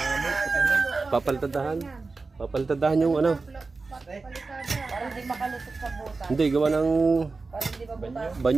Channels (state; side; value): quieter; left; 3.9 dB